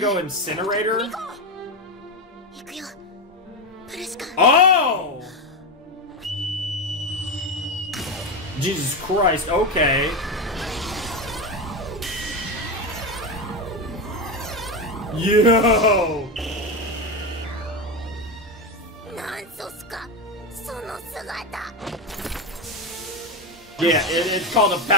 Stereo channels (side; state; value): both; normal; correlation 0.14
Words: incinerator? 行くよ。プレシカ。 Oh! Jesus Christ, okay. Yo! なんソスか。その姿。 Yeah, it's called a